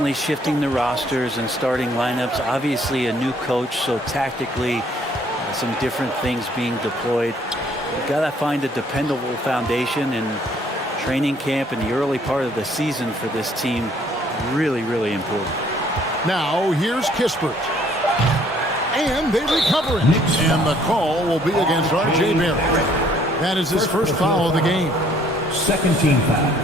shifting the rosters and starting lineups. Obviously a new coach, so tactically some different things being deployed. You've got to find a dependable foundation, and training camp in the early part of the season for this team really, really important. Now here's Kispert. And they recover it. And the call will be against RJ Barrett. That is his first foul of the game. Second team foul.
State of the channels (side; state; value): both; normal; correlation 0.62